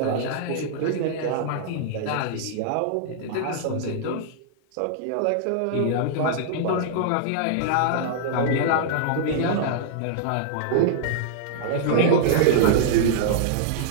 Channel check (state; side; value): different; both; correlation -0.01